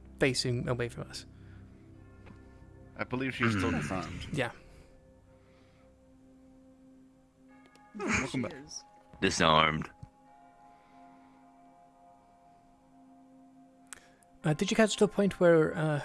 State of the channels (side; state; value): both; identical; correlation 1.00